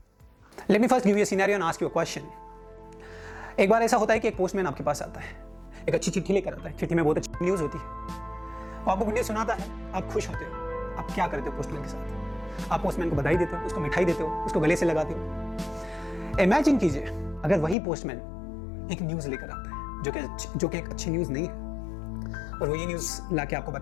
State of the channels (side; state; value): right; drops out; at 17.8 s